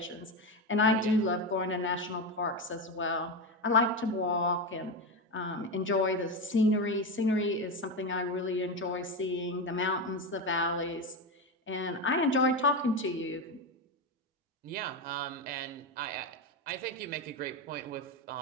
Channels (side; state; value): both; normal; correlation 0.15